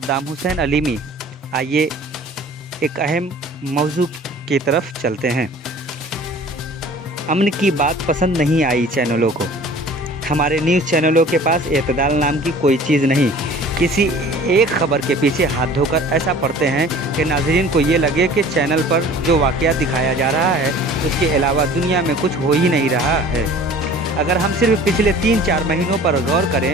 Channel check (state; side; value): normal; both; correlation 0.46